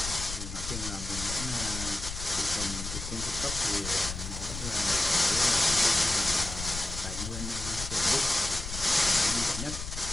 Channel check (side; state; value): left; noise; rumble, 7 dB below the sound